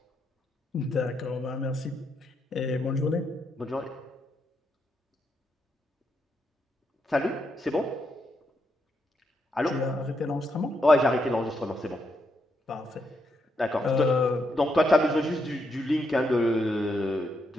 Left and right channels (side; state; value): both; normal; correlation 0.80